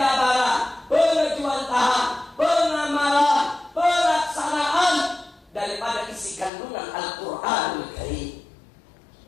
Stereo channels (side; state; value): right; drops out; at 6.5 s